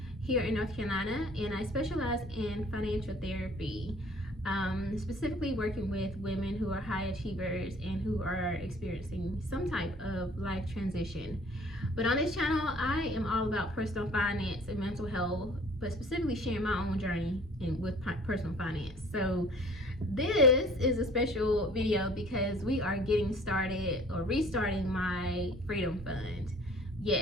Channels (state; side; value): normal; both; correlation 0.52